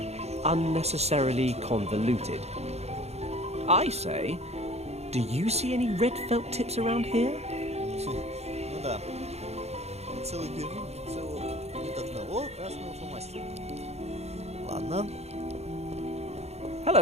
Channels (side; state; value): left; late; 0.31 ms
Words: unnecessarily convoluted. I say, do you see any red felt tips around here? Ну да. Целый Берлин, целого нет одного красного фломастера. Ладно.